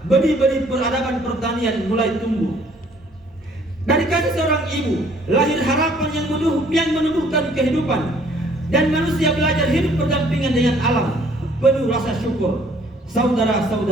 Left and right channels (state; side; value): normal; both; correlation 0.59